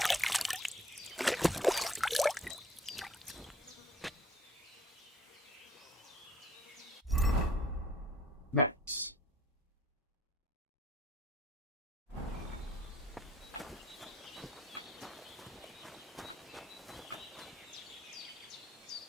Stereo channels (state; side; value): normal; both; correlation 0.57